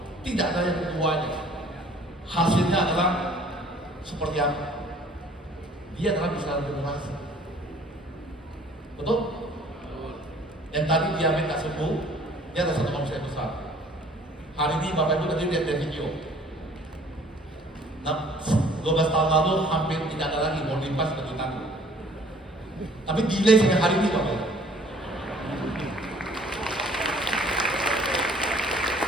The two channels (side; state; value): both; normal; correlation 0.55